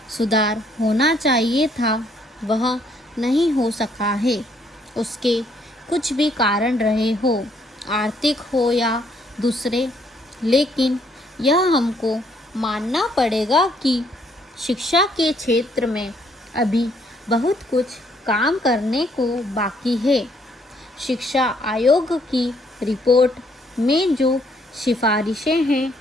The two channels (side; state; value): both; normal; correlation 0.68